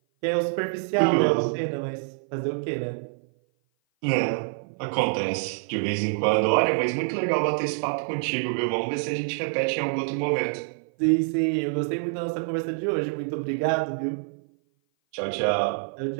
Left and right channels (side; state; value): left; silent; 56 dB below the other